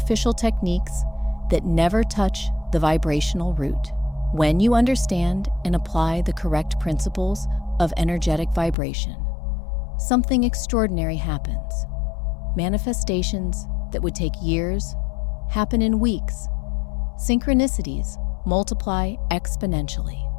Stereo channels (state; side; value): drops out; right; at 8.8 s